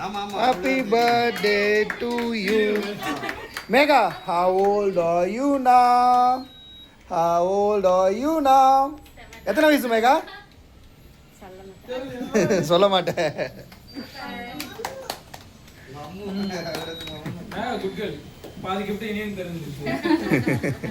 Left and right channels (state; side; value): identical; both; correlation 1.00